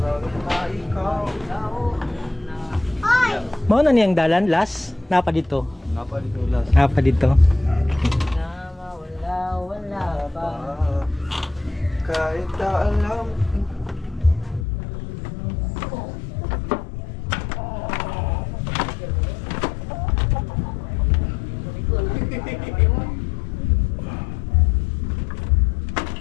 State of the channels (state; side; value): drops out; right; at 14.7 s